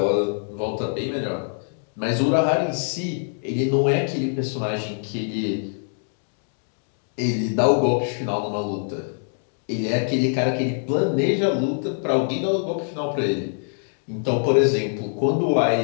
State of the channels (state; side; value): silent; right; 63 dB below the other